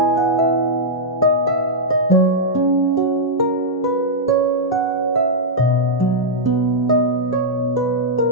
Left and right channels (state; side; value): normal; both; correlation -0.06